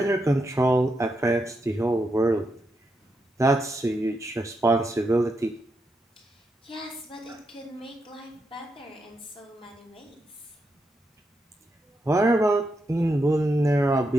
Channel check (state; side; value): normal; both; correlation 0.83